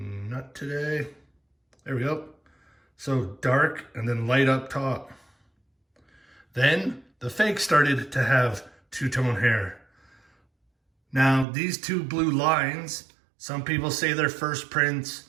today. There we go. So dark and then light up top. Then the fake started to have two-tone hair. Now these two blue lines, some people say they're first prints.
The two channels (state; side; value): drops out; left; at 11.5 s